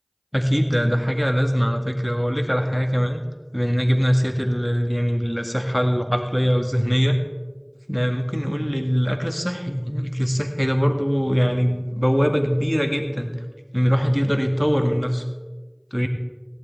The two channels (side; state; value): both; identical; correlation 1.00